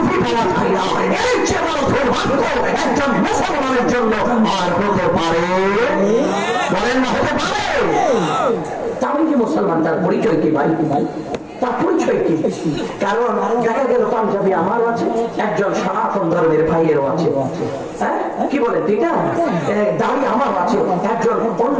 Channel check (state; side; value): identical; both; correlation 1.00